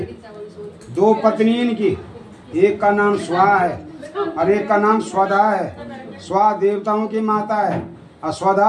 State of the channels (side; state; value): both; identical; correlation 1.00